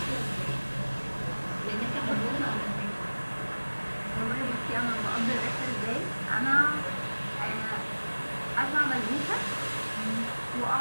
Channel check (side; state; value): both; inverted; correlation -1.00